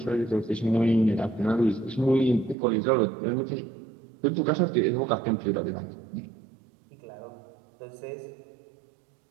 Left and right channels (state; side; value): drops out; left; at 2.6 s